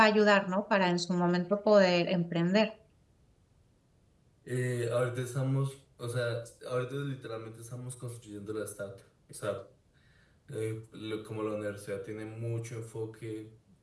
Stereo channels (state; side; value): identical; both; correlation 1.00